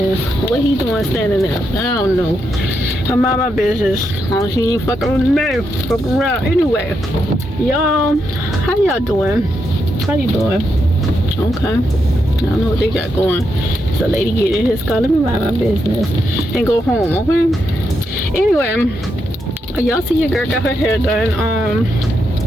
What he doing standing there? I don't know. I'm out my business. She ain't fucking with me. Fuck around. Anyway, y'all, how y'all doing? How you doing? Okay. I don't know what they got going. It's a lady getting in his car. Let me mind my business and go home, okay? Anyway, y'all see your girl got her hair done.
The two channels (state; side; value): normal; both; correlation 0.82